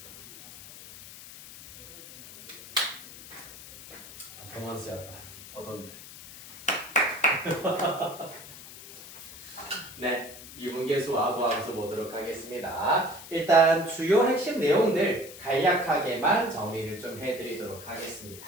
퍼포먼스였다. 어떤데? 네, 미분계수와 도함수 보도록 하겠습니다. 일단 주요 핵심 내용들 간략하게만 정리를 좀 해드리도록 하겠습니다.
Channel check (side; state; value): left; noise; hiss, 15 dB below the sound